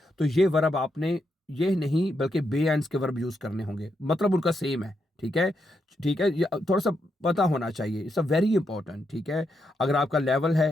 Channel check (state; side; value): normal; both; correlation 0.82